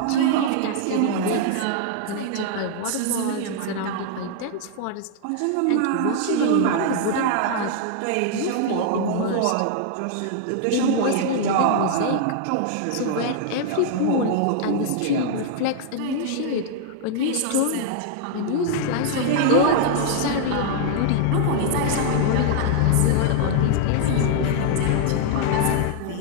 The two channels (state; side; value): different; both; correlation 0.00